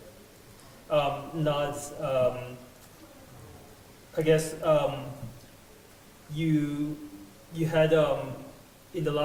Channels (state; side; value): identical; both; correlation 1.00